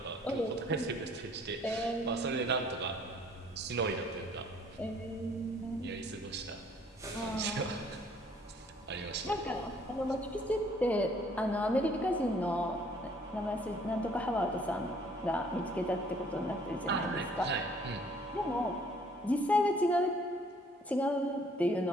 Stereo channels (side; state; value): both; normal; correlation 0.60